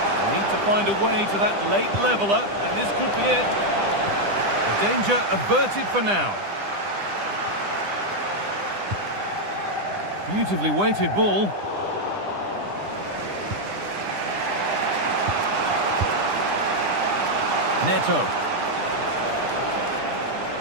Need to find a way to that late leveller, and this could be it. The danger averted for now. Beautifully weighted ball. Neto.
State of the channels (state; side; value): late; left; 10 ms